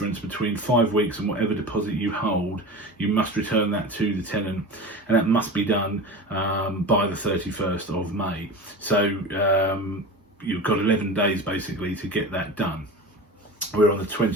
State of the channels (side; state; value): both; normal; correlation 0.31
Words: between 5 weeks and whatever deposit you hold. You must return that to the tenant, and that must be done by the 31st of May. So you've got 11 days basically to get that done. We're on the